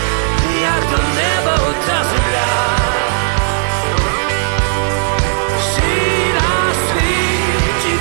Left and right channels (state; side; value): silent; left; digital silence